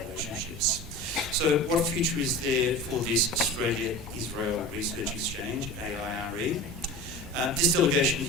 So what future is there for this Australia-Israel Research Exchange, AIRE? This delegation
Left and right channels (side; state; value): both; normal; correlation 0.33